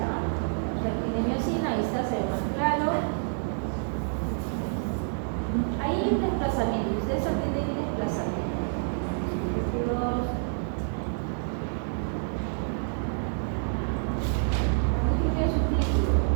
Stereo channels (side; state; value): left; silent; digital silence